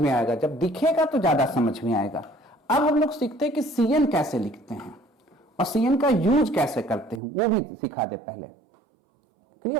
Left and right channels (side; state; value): left; drops out; at 7.2 s